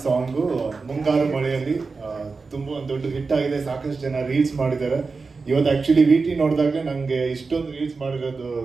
ಸಾಂಗು ಮುಂಗಾರು ಮಳೆಯಲ್ಲಿ ತುಂಬ ಒಂದು ದೊಡ್ಡ ಹಿಟ್ ಆಗಿದೆ. ಸಾಕಷ್ಟು ಜನ ರೀಲ್ಸ್ ಮಾಡಿದ್ದಾರೆ. ಇವತ್ತು ಆ್ಯಕ್ಚುಲಿ ವಿ ಟಿ ನೋಡಿದಾಗ ನನಗೆ ಇಷ್ಟೊಂದು ರೀಲ್ಸ್ ಮಾಡಿರೋದು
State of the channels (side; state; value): left; quieter; 4.4 dB